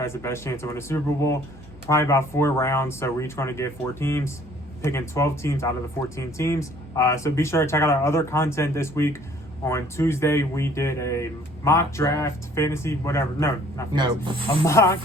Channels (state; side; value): normal; both; correlation 0.57